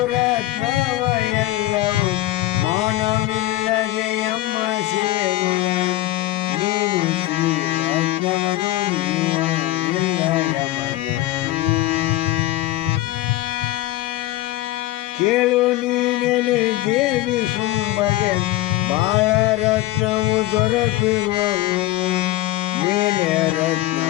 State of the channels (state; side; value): quieter; right; 16.2 dB